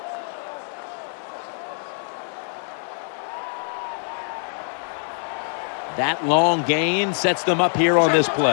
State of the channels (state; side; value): silent; right; 62 dB below the other